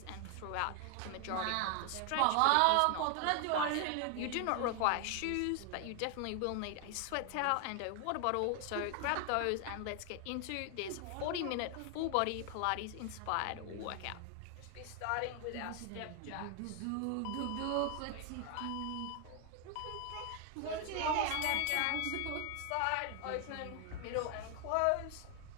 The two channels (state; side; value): different; both; correlation 0.00